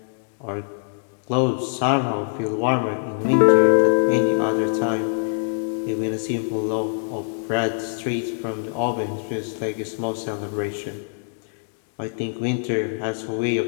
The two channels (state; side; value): silent; right; digital silence